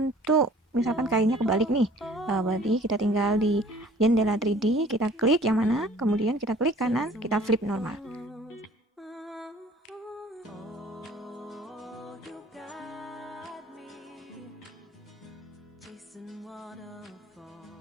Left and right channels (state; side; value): normal; both; correlation 0.51